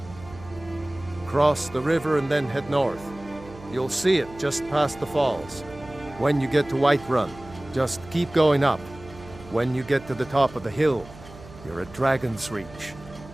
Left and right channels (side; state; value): right; noise; hum, 19 dB below the sound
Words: Cross the river and then head north. You'll see it just past the falls. When you get to Whiterun, just keep going up. When you get to the top of the hill, you're at Dragon's Reach,